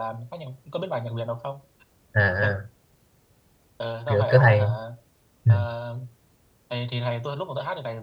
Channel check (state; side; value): identical; both; correlation 1.00